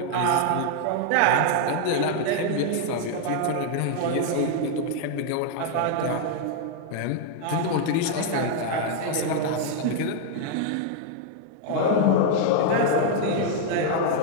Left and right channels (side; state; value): both; different; correlation 0.00